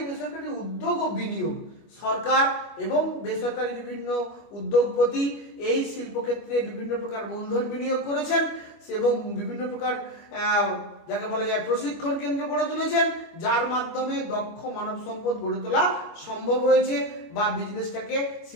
বেসরকারি উদ্যোগ ও বিনিয়োগ, সরকার এবং বেসরকারি বিভিন্ন উদ্যোগপতি এই শিল্পক্ষেত্রে বিভিন্ন প্রকার মূলধন বিনিয়োগ করেছেন এবং বিভিন্ন প্রকার যাকে বলা যায় প্রশিক্ষণ কেন্দ্র গড়ে তুলেছেন, যার মাধ্যমে দক্ষ মানব সম্পদ গড়ে তোলা সম্ভব হয়েছে বা বিজনেসটাকে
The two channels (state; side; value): late; right; 25 ms